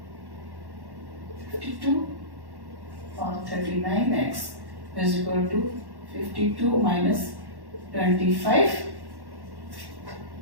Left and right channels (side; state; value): left; late; 1.1 ms